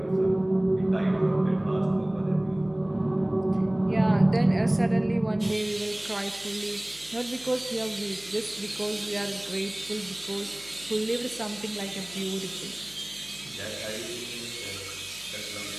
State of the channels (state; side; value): noise; right; hum, 26 dB below the sound